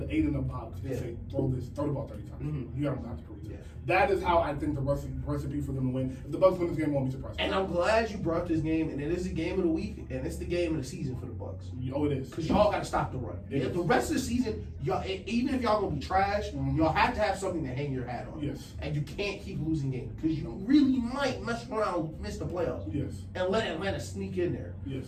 8 in the box and say throw the ball 30 times. Mm-hmm. You don't have to prove it. Yeah. That is how I think the recipe for them to win. If the Bucs win this game, I won't be surprised. And I'm glad you brought this game, and it is the game of the week, and it's the game of the season for the Bucs. Oh, it is. Because y'all got to stop the run. The rest of the season, y'all, even if y'all gonna be trash, y'all have to have something to hang your hat on. Yes. And you can't keep losing games because you really might mess around, miss the playoffs. Yes. And let Atlanta sneak in there. Yes.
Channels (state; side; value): identical; both; correlation 1.00